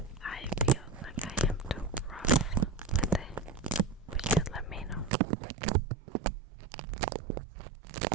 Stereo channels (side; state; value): left; drops out; at 5.1 s